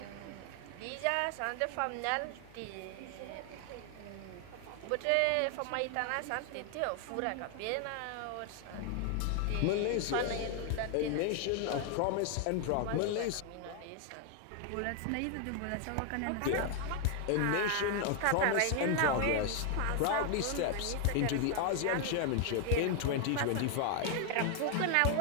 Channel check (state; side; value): different; both; correlation 0.00